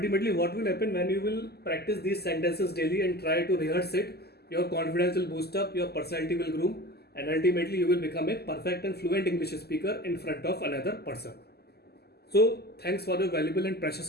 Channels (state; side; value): late; right; 0.46 ms